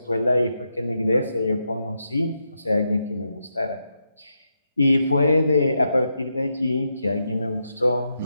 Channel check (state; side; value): inverted; both; correlation -0.83